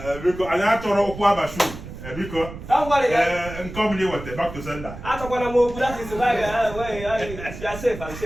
Biko anyị achọrọ ụkwụ abashu. Biko. Don't worry. Come here with back to sender. Atokwana mo that is why you are safe and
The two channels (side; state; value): right; noise; rumble, 12 dB below the sound